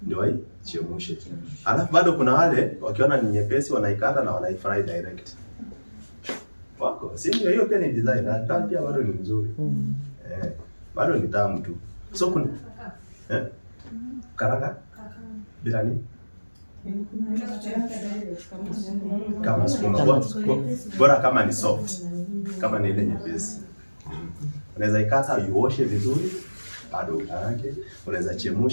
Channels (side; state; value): both; inverted; correlation -1.00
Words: ndio waichemshe. Alafu bado kuna wale wakiona ni nyepesi wanaikata na wanaifry direct. Wako, si ndio? Hiyo pia ni design. Hata pia bado ni nzuri. Bado ni tamu tu. So kuna karanga bila nini? Kama sukuma bora kama ni soft, kama ni ile nyepesi. Unaweza ikata uoshe vizuri, bado ukaange. Unaweza